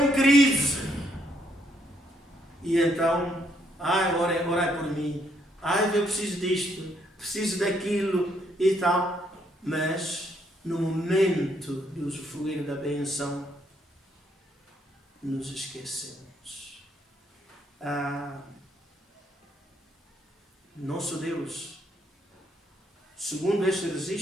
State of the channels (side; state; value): both; normal; correlation 0.72